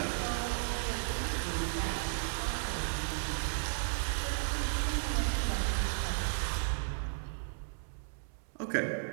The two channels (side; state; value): left; silent; digital silence